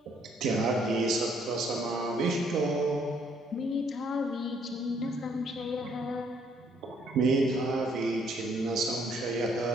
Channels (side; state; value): both; normal; correlation 0.67